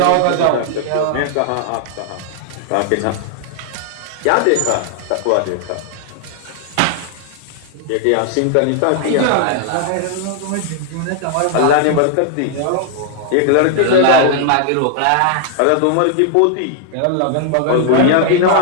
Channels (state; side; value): different; both; correlation 0.00